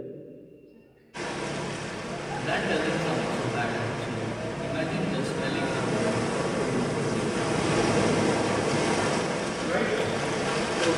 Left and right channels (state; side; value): identical; both; correlation 1.00